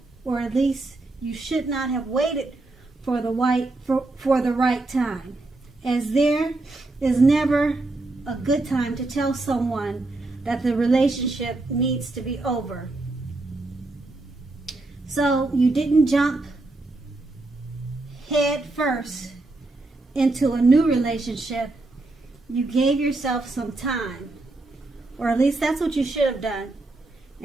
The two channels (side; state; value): left; quieter; 3.0 dB